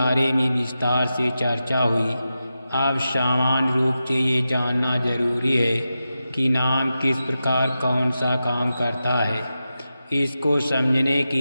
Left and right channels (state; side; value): inverted; both; correlation -0.91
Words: में विस्तार से चर्चा हुई। अब सामान्य रूप से ये जानना जरूरी है कि नाम किस प्रकार कौन सा काम करता है। इसको समझने